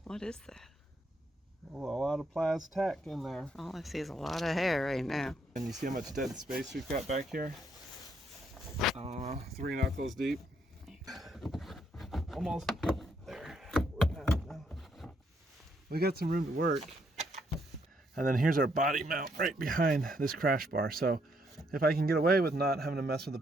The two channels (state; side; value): normal; both; correlation 0.73